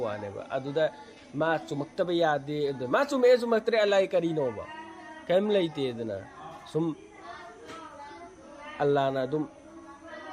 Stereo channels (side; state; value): both; identical; correlation 1.00